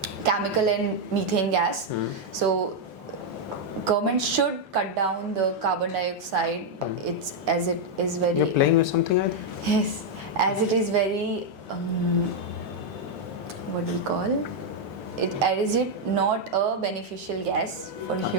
chemical and methane gas. So government should cut down the carbon dioxide. It's as it is very. You're playing with something, I think? Yes, as it is very. What do we call it? Is it not a beneficial gas for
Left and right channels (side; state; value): left; late; 6.9 ms